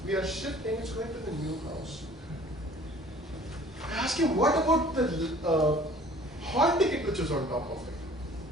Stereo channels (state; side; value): normal; both; correlation 0.50